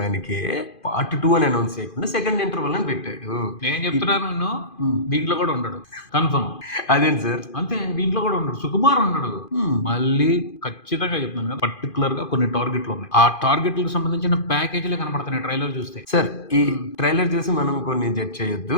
పార్ట్ 2 అని అనౌన్స్ చేయకుండా సెకండ్ ఇంటర్వల్ అని పెట్టాడు. నేను చెప్తున్నాను దీంట్లో కూడా ఉండడు కన్ఫర్మ్. అదేంటి సార్? అంతే, దీంట్లో కూడా ఉండడు, సుకుమార్ ఉండడు. మళ్ళీ ఖచ్చితంగా చెప్తున్నాను కదా, పర్టికులర్ గా కొన్ని టార్గెట్లు ఉన్నాయి. ఆ టార్గెట్లకు సంబంధించిన ప్యాకేజీలు కనపడుతున్నాయి ట్రైలర్ చూస్తే. సార్ ఈ ట్రైలర్ చూసి మనం కొన్ని జడ్జ్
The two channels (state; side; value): late; right; 2.5 ms